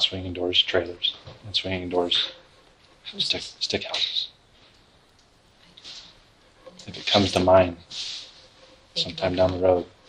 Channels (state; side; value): identical; both; correlation 1.00